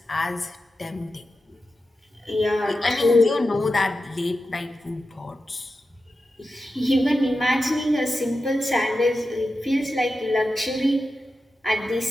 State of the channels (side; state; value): both; normal; correlation 0.91